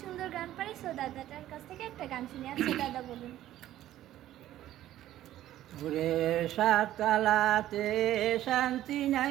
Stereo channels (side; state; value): left; quieter; 13.3 dB